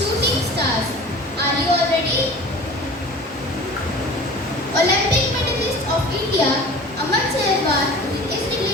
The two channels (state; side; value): normal; both; correlation 0.40